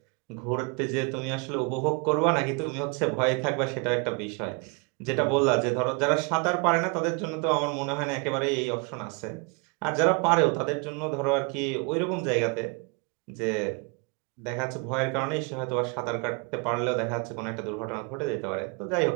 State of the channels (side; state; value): left; quieter; 31.8 dB